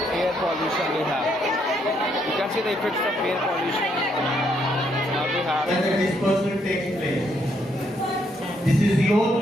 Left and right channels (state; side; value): normal; both; correlation 0.73